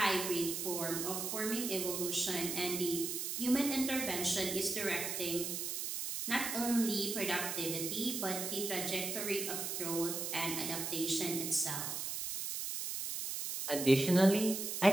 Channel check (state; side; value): noise; right; hiss, 3 dB below the sound